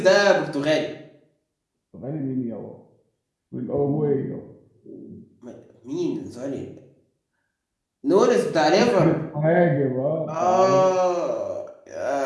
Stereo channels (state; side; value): identical; both; correlation 1.00